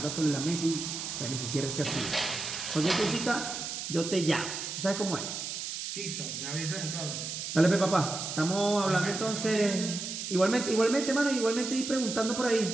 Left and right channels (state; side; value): noise; right; hiss, 5 dB below the sound